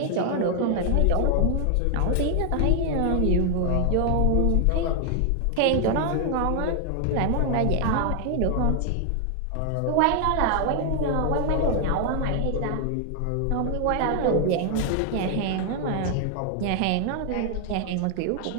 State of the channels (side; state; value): both; different; correlation 0.00